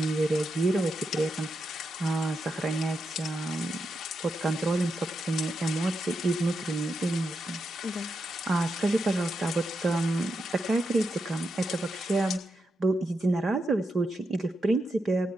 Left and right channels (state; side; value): normal; both; correlation 0.85